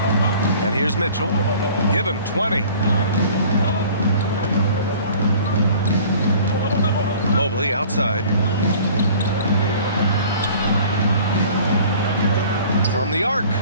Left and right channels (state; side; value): inverted; both; correlation -0.47